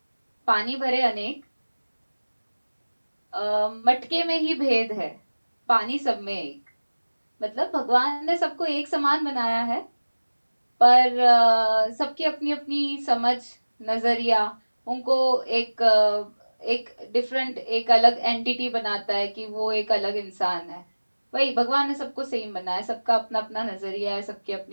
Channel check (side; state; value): both; inverted; correlation -1.00